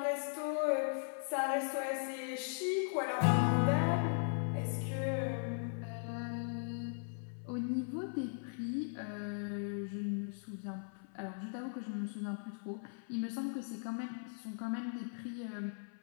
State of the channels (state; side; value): silent; right; 52 dB below the other